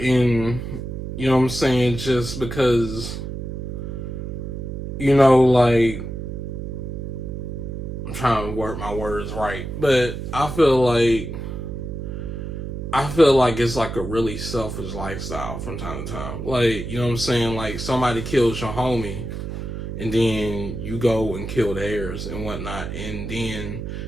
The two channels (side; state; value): right; noise; hum, 6 dB below the sound